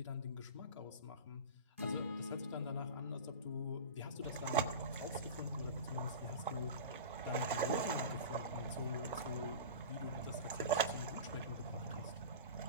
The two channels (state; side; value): inverted; both; correlation -0.31